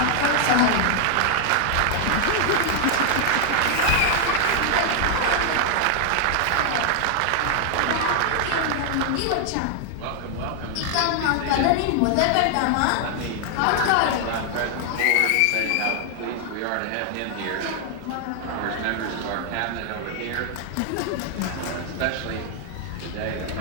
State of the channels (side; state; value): both; different; correlation 0.00